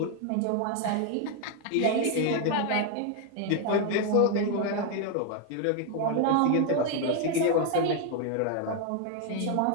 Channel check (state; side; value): different; both; correlation 0.01